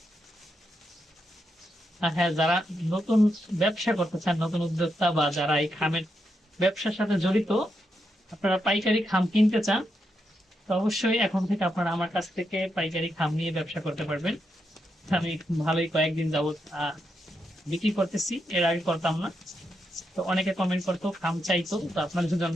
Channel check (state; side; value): normal; both; correlation 0.83